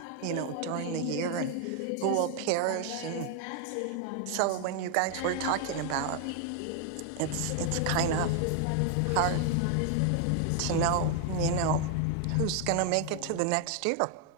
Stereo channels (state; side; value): different; both; correlation 0.00